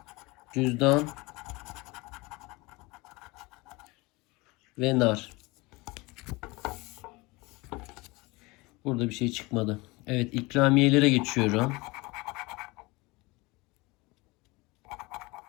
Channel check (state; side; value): quieter; right; 23.8 dB